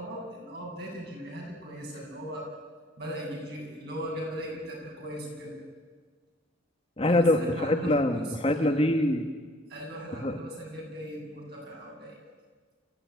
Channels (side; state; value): both; normal; correlation 0.57